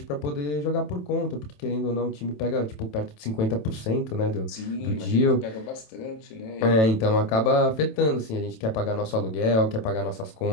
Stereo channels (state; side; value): late; right; 27 ms